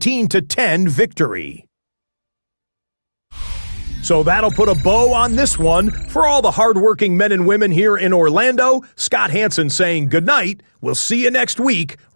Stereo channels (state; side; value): inverted; both; correlation -1.00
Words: victory. So that'll put a bow on this one. For all the hardworking men and women here in Orlando, Scott Hansen saying goodnight. We'll see you next week